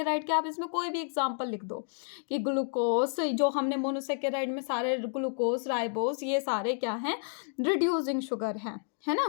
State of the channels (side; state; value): right; silent; digital silence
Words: के आप इसमें कोई भी एग्जांपल लिख दो कि ग्लूकोज, जो हमने मोनोसेकेराइड में सारे ग्लूकोज, राइबोज, ये सारे क्या हैं, रिड्यूसिंग शुगर हैं, है